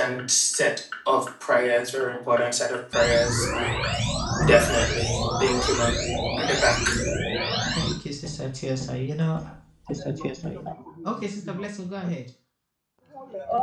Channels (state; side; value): identical; both; correlation 1.00